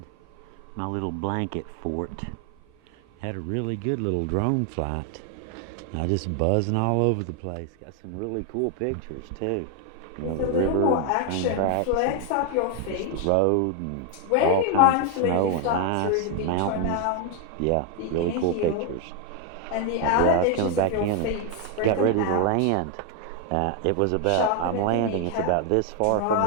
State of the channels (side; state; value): both; different; correlation 0.01